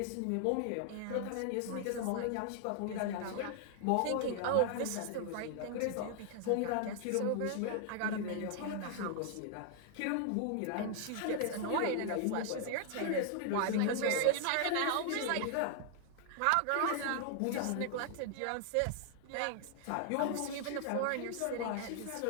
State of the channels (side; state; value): both; different; correlation 0.00